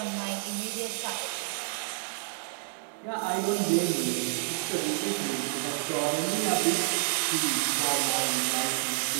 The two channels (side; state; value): left; silent; digital silence